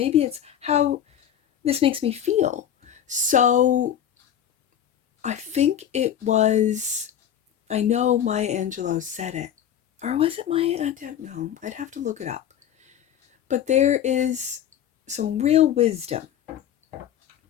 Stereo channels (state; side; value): quieter; right; 9.8 dB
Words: it's how this makes me feel. So I think it was, I know Maya Angelou said it, or was it Maya? I don't know. I'd have to look it up. But there is some real wisdom